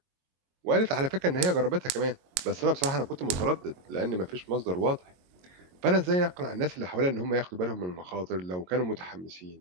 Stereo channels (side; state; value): left; late; 22 ms